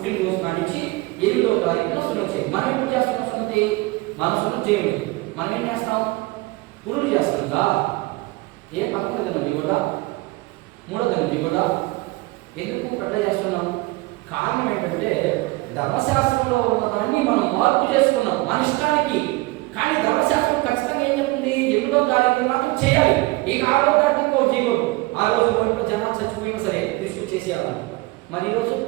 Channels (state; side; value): quieter; left; 22.4 dB